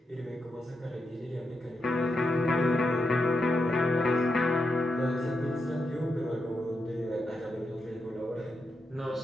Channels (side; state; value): both; normal; correlation 0.85